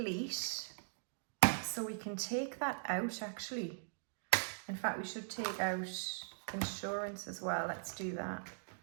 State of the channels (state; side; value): silent; left; digital silence